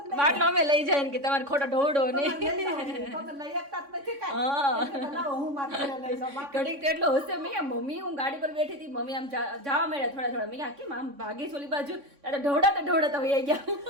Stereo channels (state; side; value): late; left; 3.6 ms